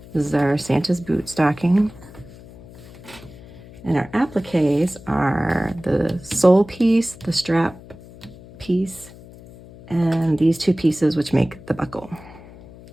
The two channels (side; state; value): left; noise; hum, 19 dB below the sound